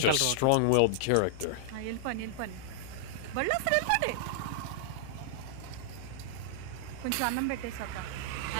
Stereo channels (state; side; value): different; both; correlation -0.01